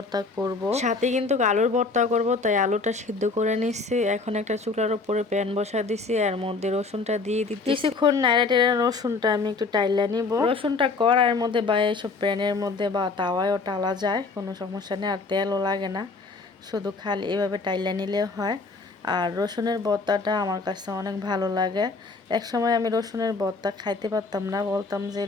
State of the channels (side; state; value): right; quieter; 4.0 dB